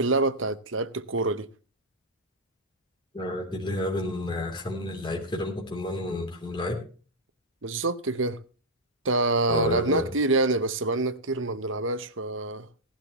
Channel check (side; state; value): both; normal; correlation -0.07